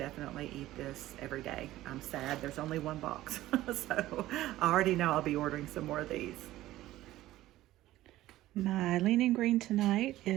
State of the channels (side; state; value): left; quieter; 15.5 dB